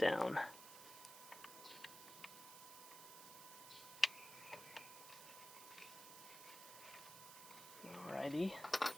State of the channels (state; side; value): noise; right; hiss, 12 dB below the sound